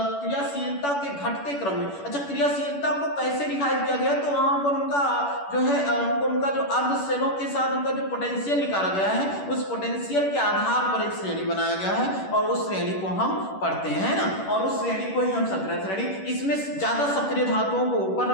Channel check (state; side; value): late; right; 11 ms